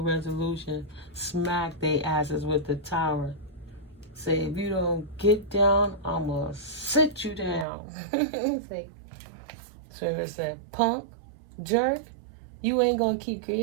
resolution. Smack their asses with the tower. Say, if you don't get down, I'm going to sit you down. Say, Spirit said, punk, jerk, you ain't going to keep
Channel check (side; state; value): left; drops out; at 7.7 s